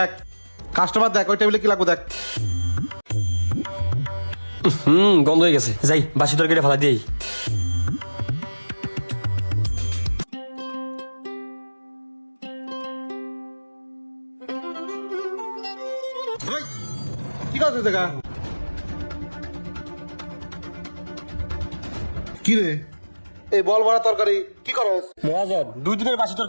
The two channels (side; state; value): both; inverted; correlation -1.00